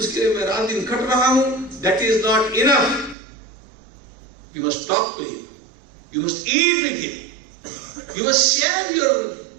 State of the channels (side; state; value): left; drops out; at 3.2 s